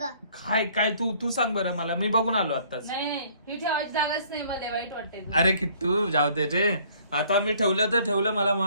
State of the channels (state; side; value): inverted; both; correlation -0.59